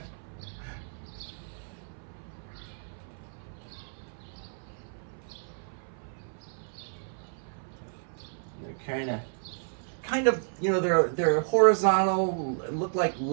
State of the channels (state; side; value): silent; left; 57 dB below the other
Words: kind of, you know, they're horizontal, look like